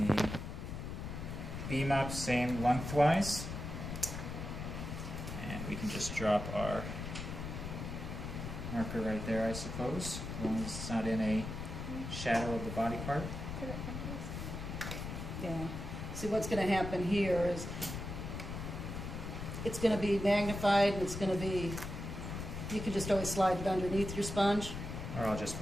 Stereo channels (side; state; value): left; noise; rumble, 6 dB below the sound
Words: the beam up, same lengthwise. And we can just drop our marker right there, I suppose, as long as it's not in a shadow of the body part. Put it someplace. Yeah. See, what's going to happen here is it's going to be magnified and it's going to be, you can just always slide it underneath your sponge. Or I'll just